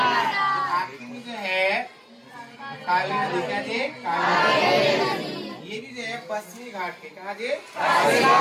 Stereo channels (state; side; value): identical; both; correlation 1.00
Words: आखिर में जो है काली नदी, क्या जी, ये भी जो है पश्चिमी घाट के, कहा जी,